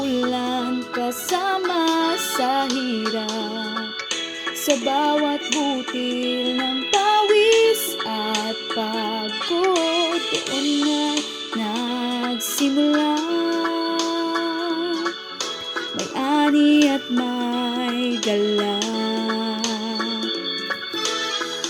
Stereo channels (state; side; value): identical; both; correlation 1.00